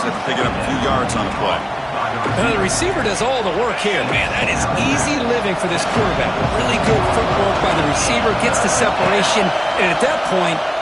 after picking up a few yards on the play. The receiver does all the work here. Man, that is easy living for this quarterback. Really good footwork by the receiver. Gets the separation. And at that point,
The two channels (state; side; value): identical; both; correlation 1.00